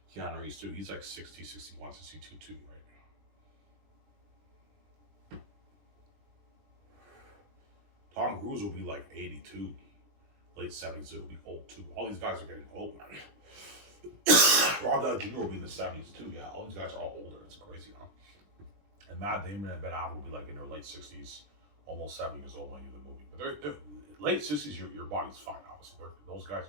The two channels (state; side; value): late; left; 20 ms